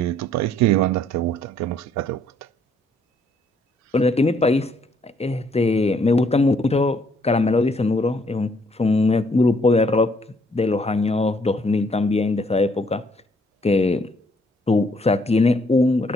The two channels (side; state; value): both; normal; correlation 0.67